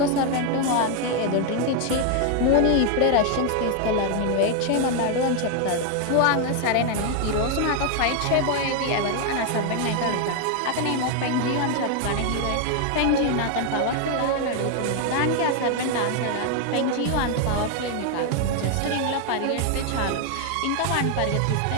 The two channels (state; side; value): different; both; correlation 0.00